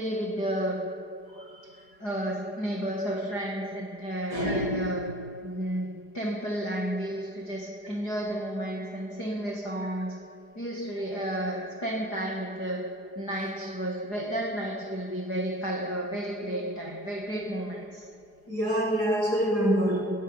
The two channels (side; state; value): right; late; 4.9 ms